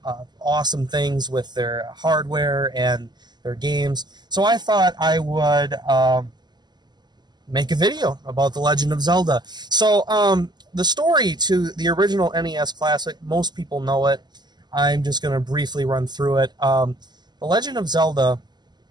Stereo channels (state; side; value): late; left; 0.21 ms